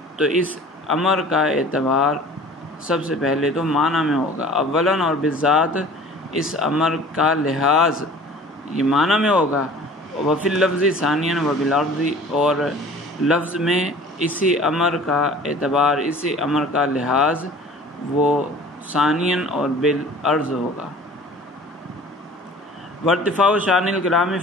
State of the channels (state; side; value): normal; both; correlation 0.46